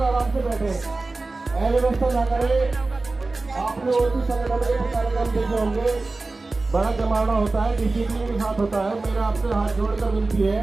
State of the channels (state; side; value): quieter; left; 3.4 dB